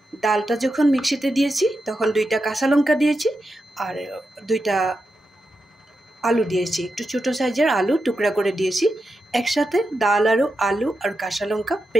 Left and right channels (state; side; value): normal; both; correlation 0.88